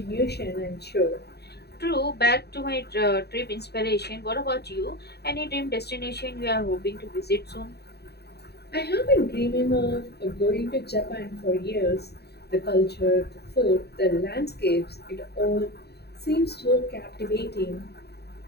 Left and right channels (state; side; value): late; right; 0.48 ms